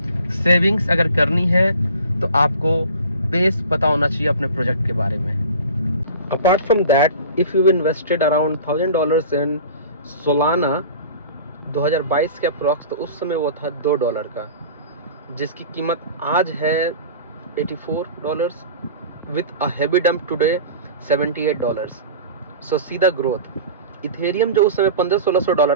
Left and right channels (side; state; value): both; inverted; correlation -0.40